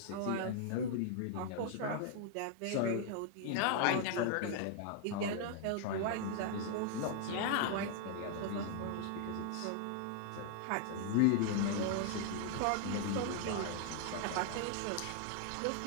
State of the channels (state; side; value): different; both; correlation 0.00